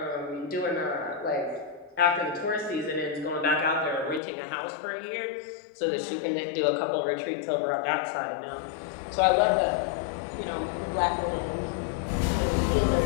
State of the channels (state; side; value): drops out; right; at 4.2 s